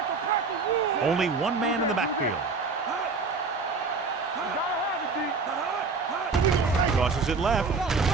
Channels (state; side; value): quieter; left; 4.4 dB